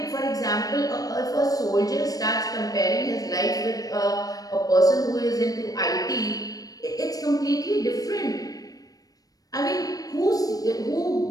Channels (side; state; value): right; late; 0.18 ms